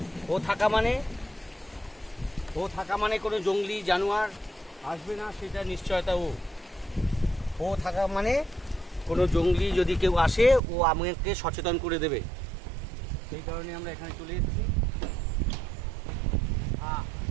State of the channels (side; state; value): left; drops out; at 10.6 s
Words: ও থাকা মানে কোনো জঙ্গলি জানোয়ার আসবে না, সেটা নিশ্চয়তা। ও থাকা মানে কোনো জঙ্গলি যদি কেউ আসে, ও আমাকে সচেতন করে দেবে। সেই কারণে আমরা এখানে চলে এসেছি।